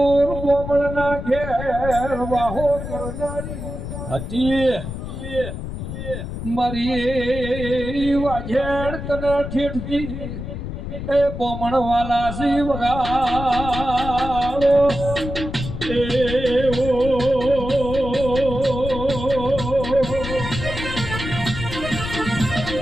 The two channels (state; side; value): noise; left; rumble, 7 dB below the sound